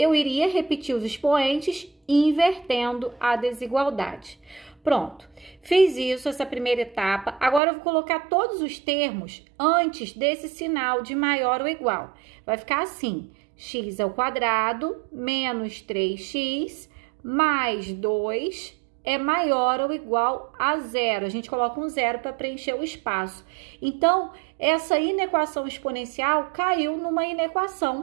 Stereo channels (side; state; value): left; drops out; at 7.6 s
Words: iria repetir os expoentes invertendo a desigualdade. Pronto, fiz isso, essa primeira etapa. Agora eu vou colocar todos os termos antes desse sinal de maior ou igual. Vai ficar assim, x² menos 3x mais 2 é maior ou igual a 0. A gente coloca um 0 para preencher o espaço. Então, essa inequação exponencial caiu numa